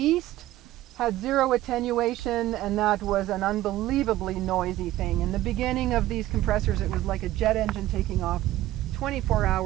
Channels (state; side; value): quieter; left; 15.1 dB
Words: Had zero attenuation, and that was an unbelievably noisy thing. In the beginning of these compressors, it was like a jet engine taking off 24